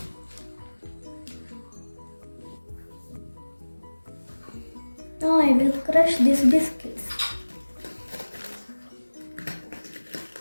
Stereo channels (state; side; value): inverted; both; correlation -1.00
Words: Now I will crush these biscuits.